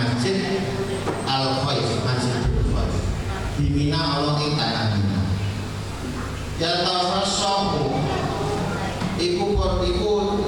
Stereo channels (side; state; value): both; identical; correlation 1.00